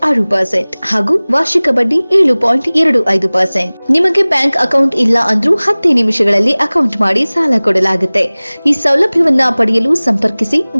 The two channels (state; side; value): inverted; both; correlation -1.00